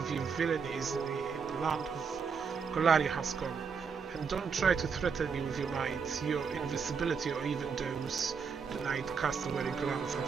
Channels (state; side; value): quieter; left; 5.9 dB